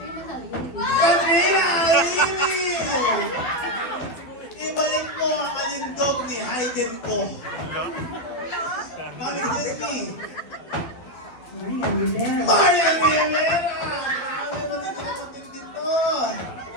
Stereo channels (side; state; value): right; late; 12 ms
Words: Katrina Alini! Ibalik mo ang alindog ni Hayden ko. Mami, Disney. Maria Rivera! Grabe, matindi to.